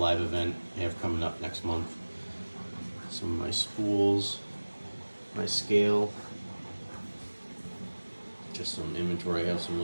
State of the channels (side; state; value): both; inverted; correlation -1.00